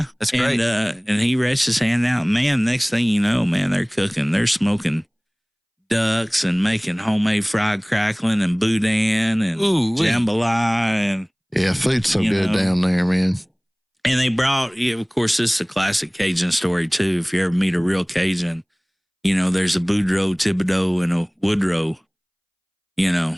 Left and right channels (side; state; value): both; identical; correlation 1.00